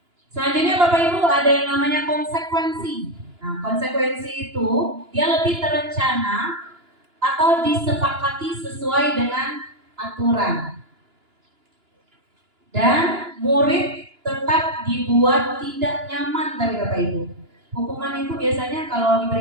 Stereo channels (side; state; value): left; late; 2.9 ms